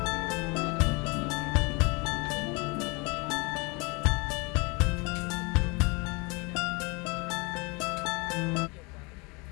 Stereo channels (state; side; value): quieter; right; 28.4 dB